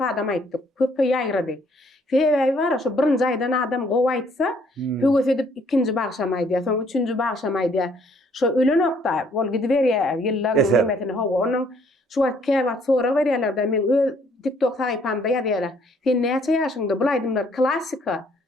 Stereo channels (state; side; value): normal; both; correlation 0.64